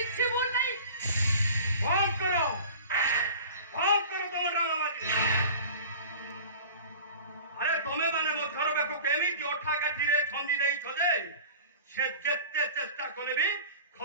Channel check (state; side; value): inverted; both; correlation -0.40